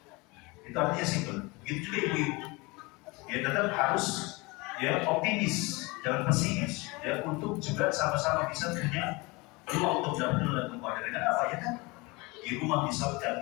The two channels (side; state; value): right; quieter; 25.2 dB